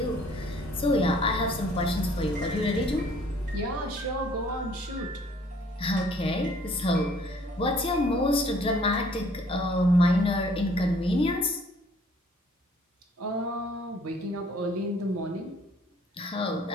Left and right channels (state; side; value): normal; both; correlation 0.58